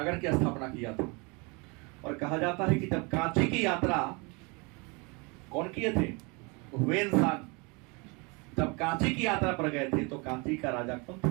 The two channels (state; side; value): quieter; left; 29.6 dB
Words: की स्थापना किया था। और कहा जाता है कि जब कांची की यात्रा कौन किए थे? हुएनसांग। जब कांची की यात्रा पर गए थे तो कांची का राजा कौन